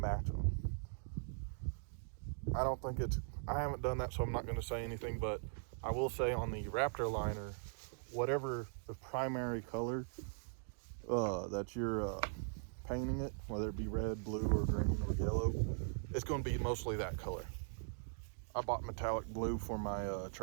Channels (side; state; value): left; silent; digital silence